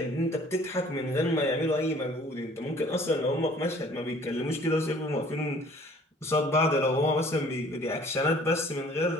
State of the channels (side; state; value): both; normal; correlation 0.53